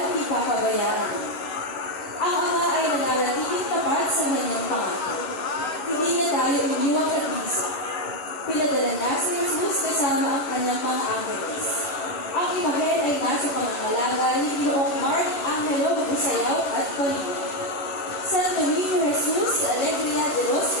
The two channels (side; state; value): right; late; 11 ms